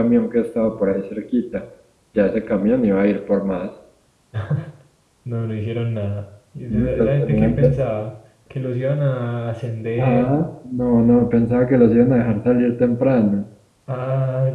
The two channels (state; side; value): identical; both; correlation 1.00